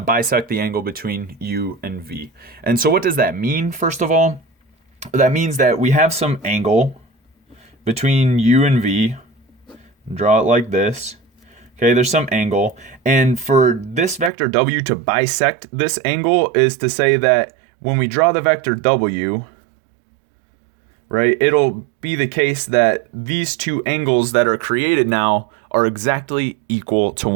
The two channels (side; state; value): left; drops out; at 14.3 s